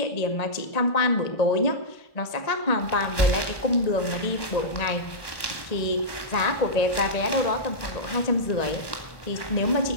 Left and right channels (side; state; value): right; late; 1.1 ms